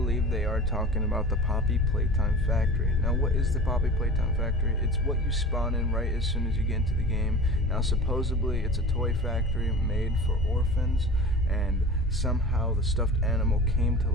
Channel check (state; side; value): normal; both; correlation 0.37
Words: they are talking about the Poppy Playtime factory. Now what is the Poppy Playtime factory? It's what you spawn in right as soon as you get into the game. Now supposedly it's a toy factory made for orphans, and somehow the stuffed animal came to